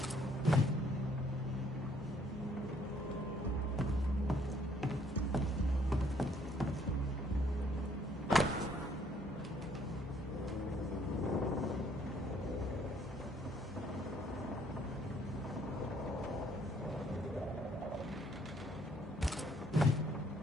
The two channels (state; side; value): normal; both; correlation 0.64